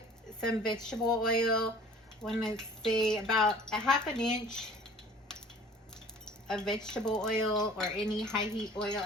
some vegetable oil. I want to say about a ½ inch of vegetable oil or any high heat oil.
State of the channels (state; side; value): normal; both; correlation 0.49